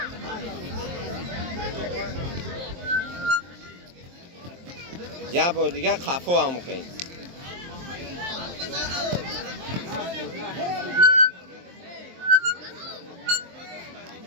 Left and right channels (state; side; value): late; left; 23 ms